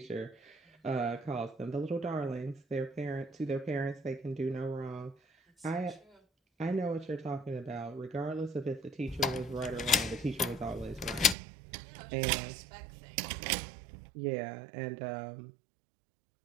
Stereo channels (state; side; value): drops out; left; at 11.4 s